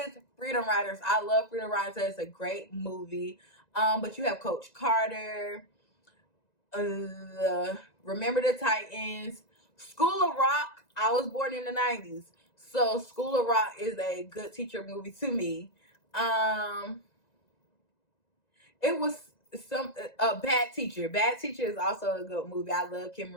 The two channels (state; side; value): late; right; 1.9 ms